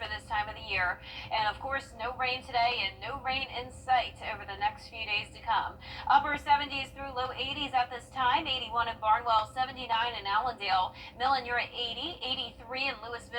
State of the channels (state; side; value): identical; both; correlation 1.00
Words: this time of the year. And of course, no rain today and no rain in sight over the next few days to come. Upper 70s through low 80s at this time, 81 in Barnwell, 79 in Allendale, Millen, you're at 80, 83 in